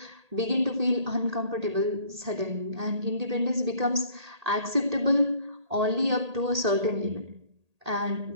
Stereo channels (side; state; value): left; late; 1.8 ms